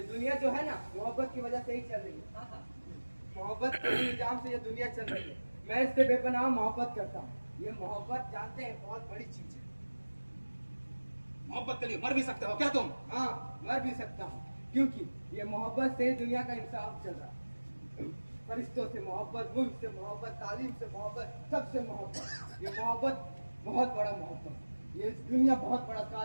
दुनिया जो है ना, मोहब्बत की वजह से ही चल रही है। मोहब्बत के निजाम से ये दुनिया चल रही है। मैं इससे बेपनाह मोहब्बत करता हूँ। ये मोहब्बत जानते हैं बहुत बड़ी चीज है। मोहब्बत के लिए मर भी सकते हो क्या तुम? हाँ, मर भी सकता हूँ, क्योंकि ये मोहब्बत से दुनिया का इंसाफ चल रहा है। फरिश्तों से मोहब्बत, मुल्क से मोहब्बत, तालीम से मोहब्बत, सबसे मोहब्बत। ये मोहब्बत बहुत बड़ा मोहब्बत। ये दुनिया बहुत बड़ा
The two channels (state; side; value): inverted; both; correlation -1.00